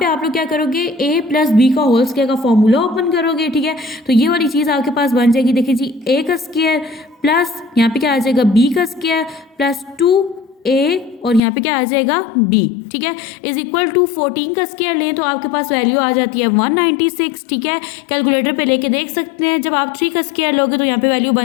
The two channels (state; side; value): drops out; right; at 11.4 s